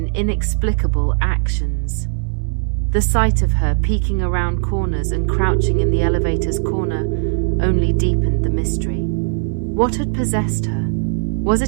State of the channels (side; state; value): left; silent; digital silence